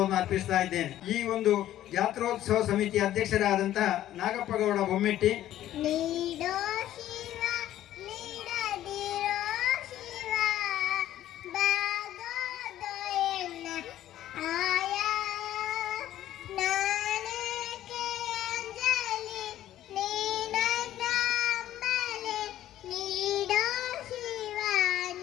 ಅರ್ಪಿಸ್ತಾ ಇದ್ದೇನೆ. ಈ ಒಂದು ಜಾತ್ರೋತ್ಸವ ಸಮಿತಿ ಅಧ್ಯಕ್ಷರಾದಂತಹ ನಾಗಪ್ಪಗೌಡ ಬೊಮ್ಮೆಟ್ಟಿ,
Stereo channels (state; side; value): quieter; right; 12.9 dB